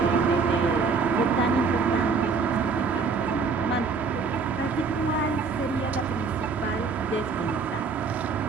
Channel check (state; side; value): quieter; left; 4.9 dB